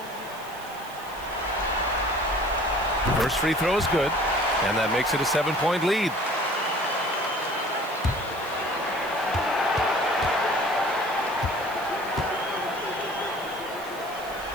First free throw is good, and that makes it a 7-point lead.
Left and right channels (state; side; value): noise; right; hiss, 19 dB below the sound